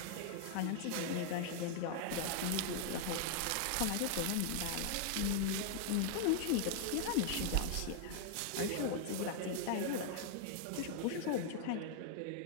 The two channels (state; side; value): different; both; correlation 0.00